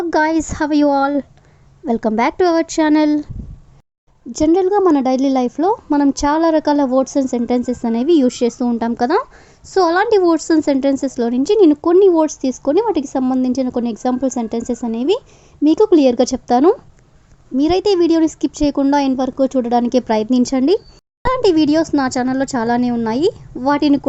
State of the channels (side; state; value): both; identical; correlation 1.00